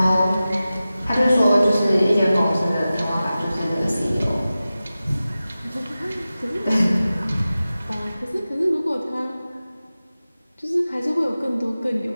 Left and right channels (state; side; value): inverted; both; correlation -0.95